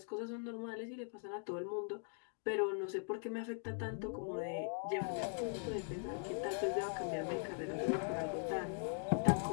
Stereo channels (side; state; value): right; silent; 50 dB below the other